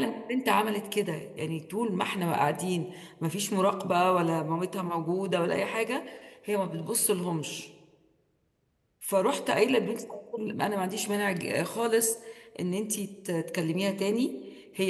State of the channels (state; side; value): identical; both; correlation 1.00